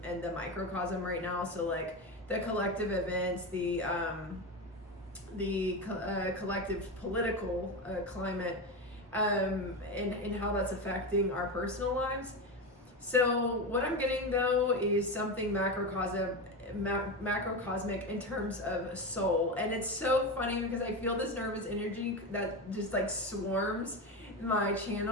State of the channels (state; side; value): normal; both; correlation 0.18